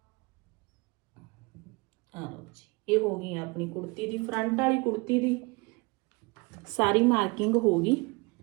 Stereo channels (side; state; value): left; quieter; 27.0 dB